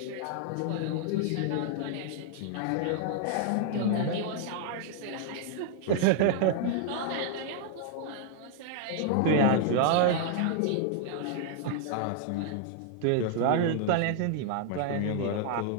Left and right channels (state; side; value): different; both; correlation -0.01